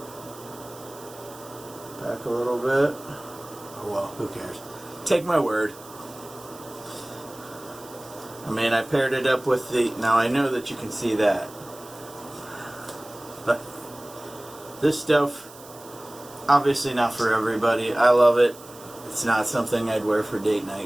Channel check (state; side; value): noise; right; hiss, 20 dB below the sound